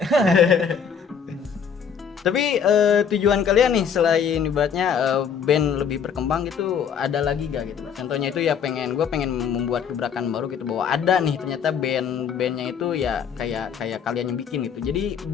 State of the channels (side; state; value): right; quieter; 7.2 dB